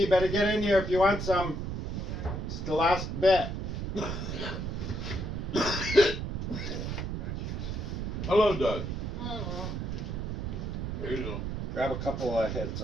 you better get in here if you want some. It's the last bit. Hello, Doug. Hello. There you go. Grab a couple of hits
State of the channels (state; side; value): noise; right; rumble, 3 dB below the sound